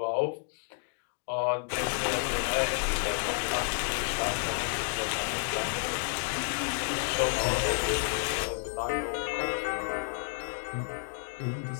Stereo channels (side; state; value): right; silent; 57 dB below the other